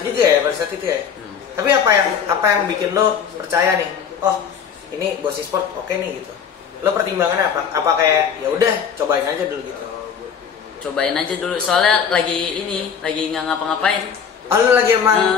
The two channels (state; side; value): quieter; right; 7.2 dB